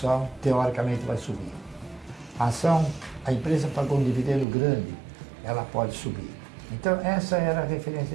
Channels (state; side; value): drops out; left; at 4.5 s